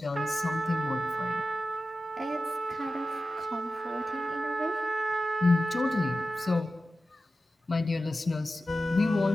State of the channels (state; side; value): normal; both; correlation 0.93